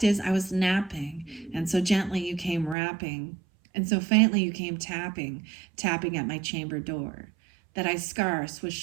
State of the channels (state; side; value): drops out; left; at 2.8 s